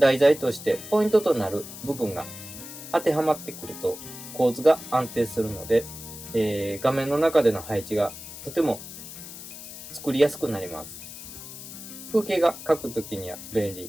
材としてポイントとなる部分が当てはまってくると構図が安定するので、画面の中での配置がとても作りやすくなります。風景が描くときには便利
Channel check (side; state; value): left; noise; hiss, 12 dB below the sound